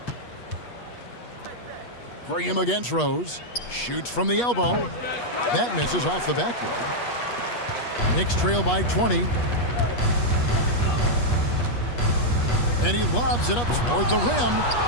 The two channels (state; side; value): late; right; 8.3 ms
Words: Graham against Rose. Shoots from the elbow. That misses off the backboard. Knicks trail by 20. And he lobs it up toward the rim.